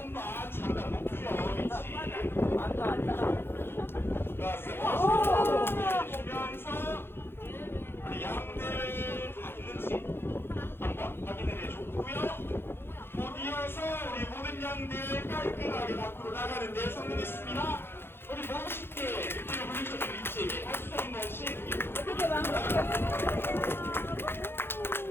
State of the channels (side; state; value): right; late; 0.11 ms